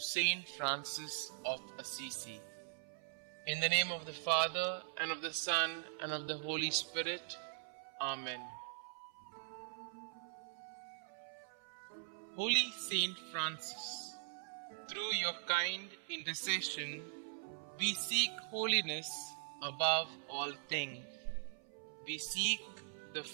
Francis of Assisi. In the name of the Father, and of the Son, and of the Holy Spirit. Amen. Holy Saint Francis, through your kind intercession, we seek holiness above all things. We seek the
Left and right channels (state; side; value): silent; left; 50 dB below the other